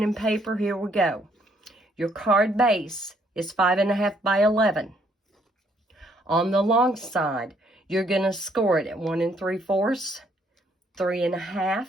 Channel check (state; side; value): normal; both; correlation 0.68